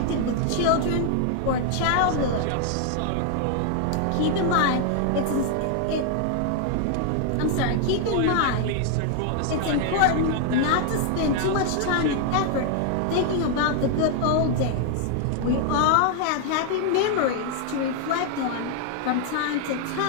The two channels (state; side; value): different; both; correlation 0.00